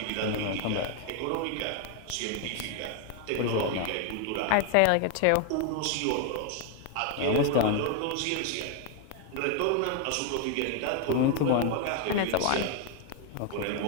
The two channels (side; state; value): both; different; correlation 0.01